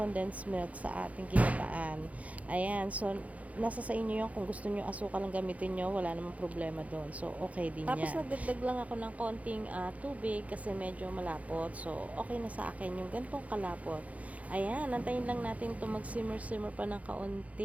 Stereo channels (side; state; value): left; late; 0.068 ms